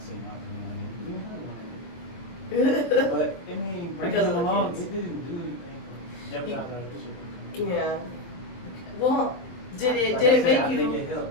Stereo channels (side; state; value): right; late; 23 ms